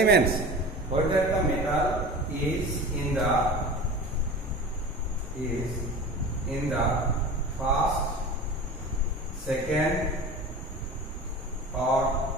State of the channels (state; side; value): normal; both; correlation 0.34